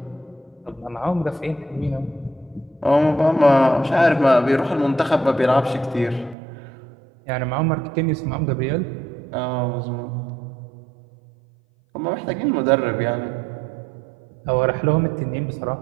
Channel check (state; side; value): drops out; left; at 6.4 s